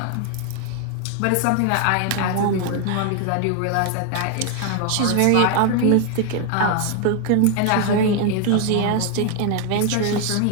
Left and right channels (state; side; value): different; both; correlation 0.00